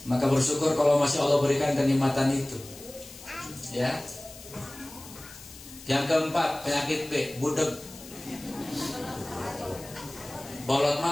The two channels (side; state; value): left; noise; hiss, 17 dB below the sound